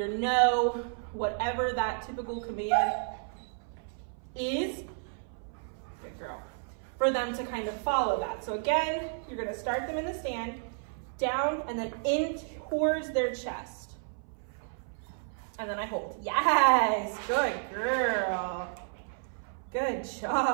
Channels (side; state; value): left; silent; 57 dB below the other